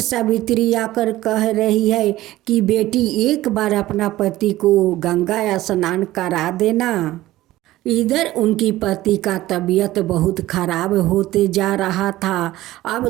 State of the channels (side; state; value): left; quieter; 16.1 dB